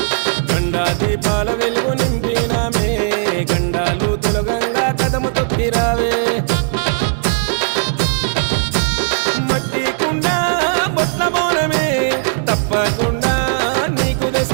గండా దీపాల వెలుగు నింపినామే గండాలు తొలగంగా కదము తొక్కి రావే మట్టి కుండ బొట్ల బోనమే తప్పకుండా నీకు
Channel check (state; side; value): silent; left; digital silence